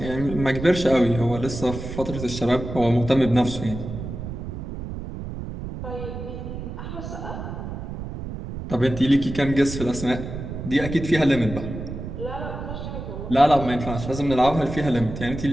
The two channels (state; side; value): noise; right; rumble, 8 dB below the sound